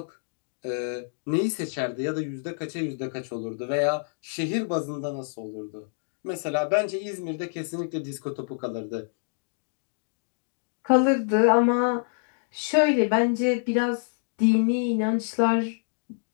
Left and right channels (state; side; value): silent; right; digital silence